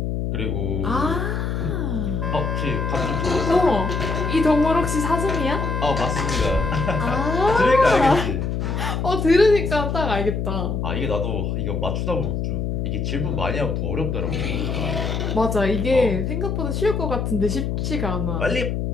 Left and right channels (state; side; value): noise; left; hum, 1 dB below the sound